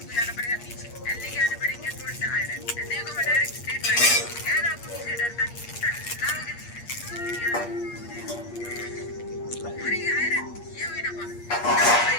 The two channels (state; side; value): late; right; 8.5 ms